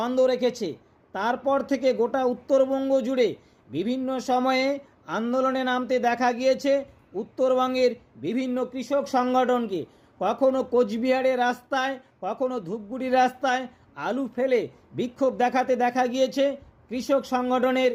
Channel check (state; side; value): identical; both; correlation 1.00